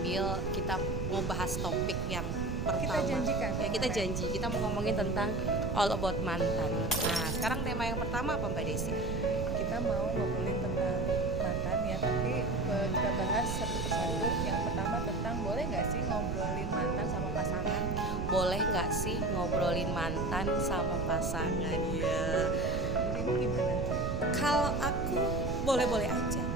kita mau bahas topik yang pertama. Kita janjikan. Ya, kita janji kita mau ngomongin tentang all about mantan. Nah, sekarang tema yang pertama apa Mbak Desi? Kita mau ngobrolin tentang mantan ya, tapi kita bahas satu persatu. Yang pertama tentang boleh nggak sih ngobrolin mantan sama pasangan? Boleh nggak sih ngobrolin mantan sama pasangan ya? Ini gimana? Kalau aku boleh-boleh aja,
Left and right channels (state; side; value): noise; right; rumble, 2 dB below the sound